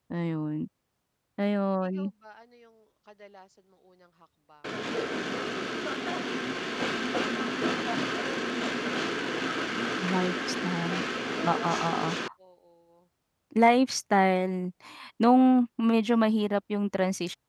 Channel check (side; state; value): both; identical; correlation 1.00